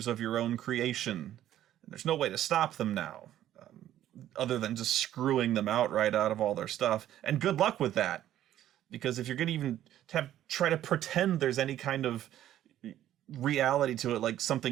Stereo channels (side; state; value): left; quieter; 12.3 dB